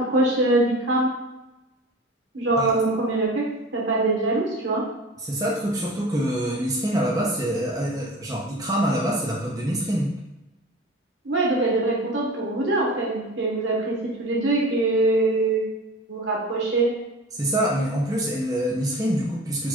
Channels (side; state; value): both; normal; correlation 0.37